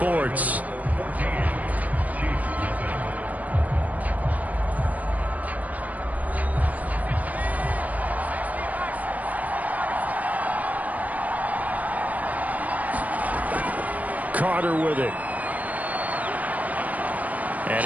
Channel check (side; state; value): left; late; 0.073 ms